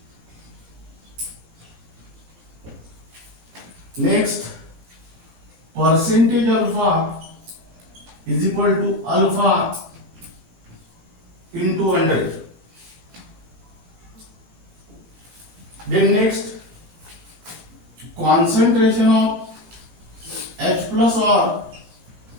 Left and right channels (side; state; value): left; late; 17 ms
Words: Next, percentage alpha is equal to alpha into 100. Then next, concentration of H plus or